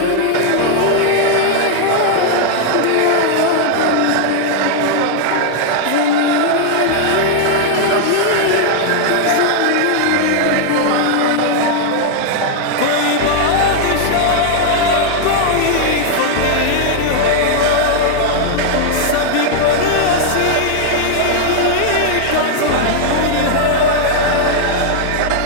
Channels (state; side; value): different; both; correlation 0.00